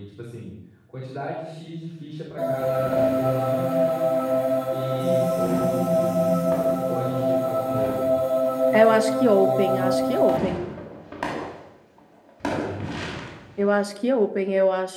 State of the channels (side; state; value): both; identical; correlation 1.00